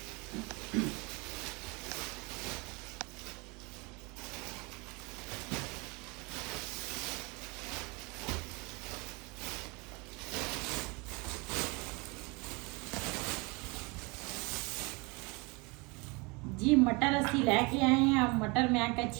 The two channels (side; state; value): left; quieter; 27.9 dB